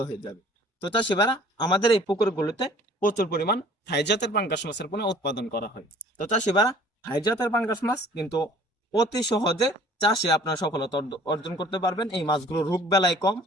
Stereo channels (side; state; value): both; normal; correlation 0.52